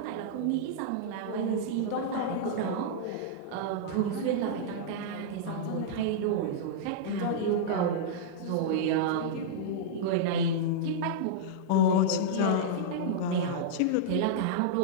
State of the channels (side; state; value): both; different; correlation -0.03